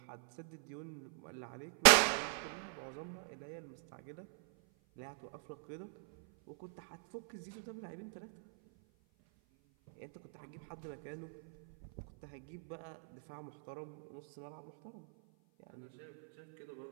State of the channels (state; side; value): silent; left; 50 dB below the other